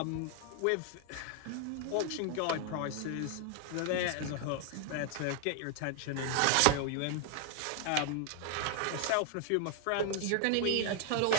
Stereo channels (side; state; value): both; different; correlation 0.00